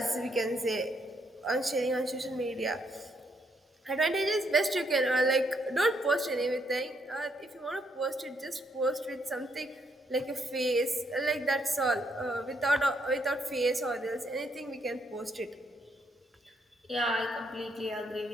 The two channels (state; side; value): normal; both; correlation 0.74